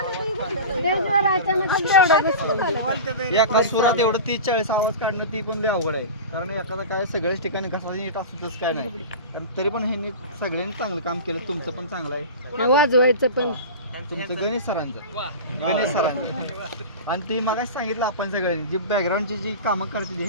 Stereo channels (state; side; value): inverted; both; correlation -0.30